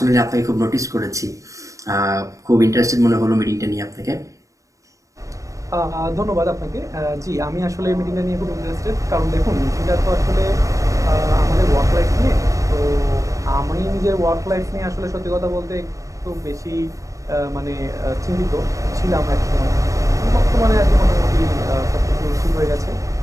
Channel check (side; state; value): left; late; 0.16 ms